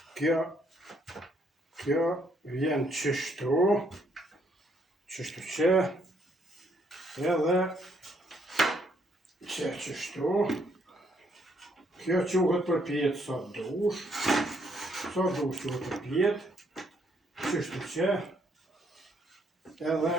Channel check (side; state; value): both; normal; correlation 0.70